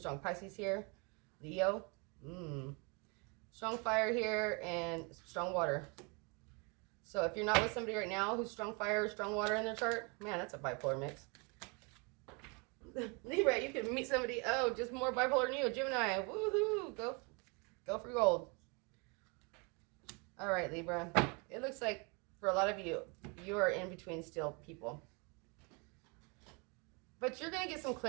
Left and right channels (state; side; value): quieter; left; 31.8 dB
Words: Pisces here. Leo. Strong fire here and strong water. So if you're not with somebody right now who's strong fire or strong water in their chart, man, that's a bipolar mix. Libra, you can meet somebody, just more bipolar than you, Gemini. Woohoo! Go for gold. All right, Libra. It looks like for a lot of you, you are in between still people. But you're going to get some